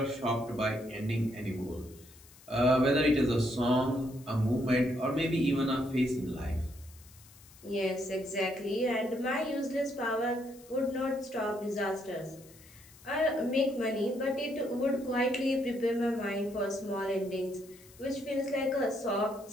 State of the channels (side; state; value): left; noise; hiss, 23 dB below the sound